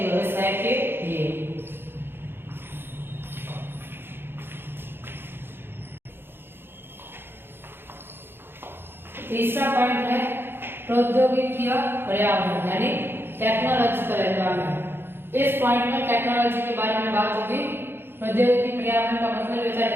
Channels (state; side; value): late; left; 0.10 ms